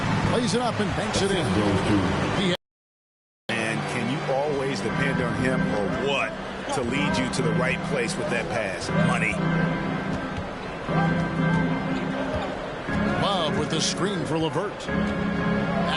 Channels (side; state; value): both; identical; correlation 1.00